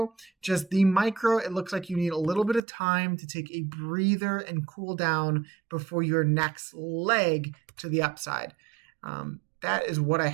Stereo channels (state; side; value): drops out; left; at 2.6 s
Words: Just the micro, it looks like you need a little bit of time to take a breather and cool down before your next leg to the upside. That is what I